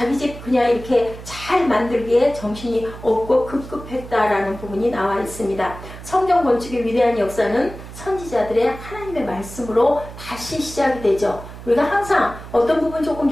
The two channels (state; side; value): noise; right; hum, 14 dB below the sound